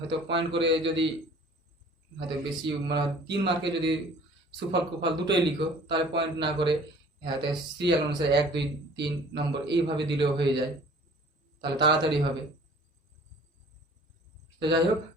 পয়েন্ট করে যদি হয়তো বেশি মানে 3 মার্কে যদি সুফল কুফল দুটোই লিখো, তাহলে পয়েন্ট না করে হয়তো সিরিয়াল অনুসারে 1 2 3 নম্বর এইভাবে দিলেও হয়ে যায়, তাহলে তাড়াতাড়ি হবে। তো যাই হোক,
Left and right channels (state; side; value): normal; both; correlation 0.50